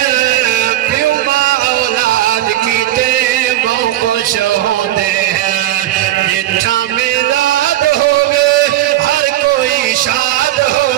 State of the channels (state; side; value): quieter; left; 14.2 dB